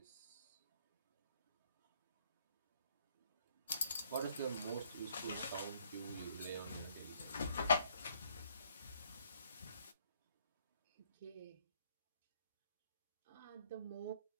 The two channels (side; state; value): both; inverted; correlation -0.65